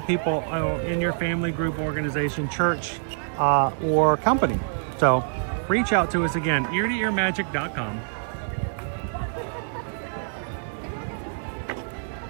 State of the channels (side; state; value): left; silent; digital silence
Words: people in your family, group, organization, church, or company. So reach out to us again, ear-to-earmagic.com.